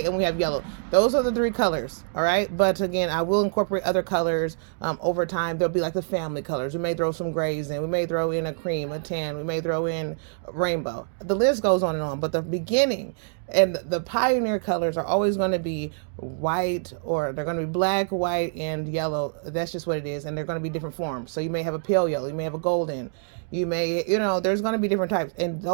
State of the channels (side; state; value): left; silent; digital silence